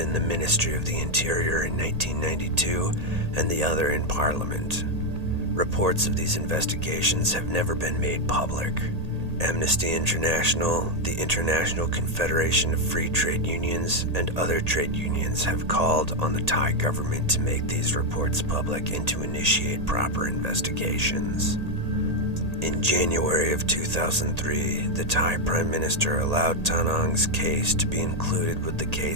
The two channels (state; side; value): late; left; 1.8 ms